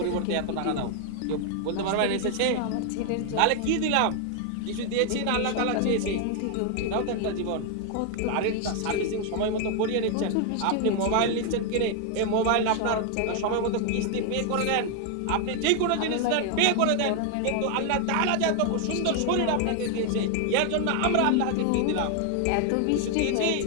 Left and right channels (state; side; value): different; both; correlation 0.00